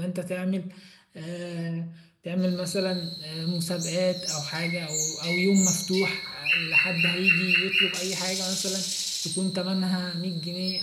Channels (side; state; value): both; identical; correlation 1.00